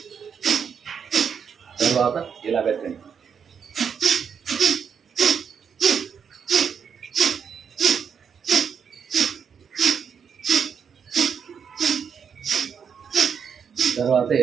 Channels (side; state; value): left; quieter; 7.0 dB